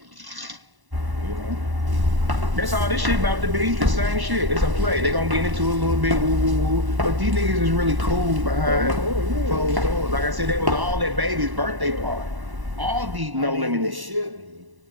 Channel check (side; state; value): left; late; 1.0 ms